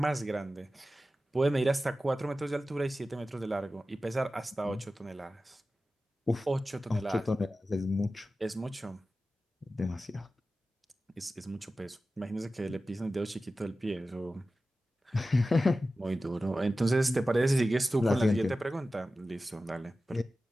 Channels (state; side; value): normal; both; correlation 0.94